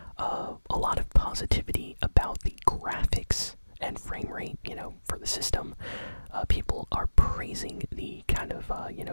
a lot of positivity about the graphics and frame rate, for the system. People are praising the kind of,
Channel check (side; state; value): both; inverted; correlation -1.00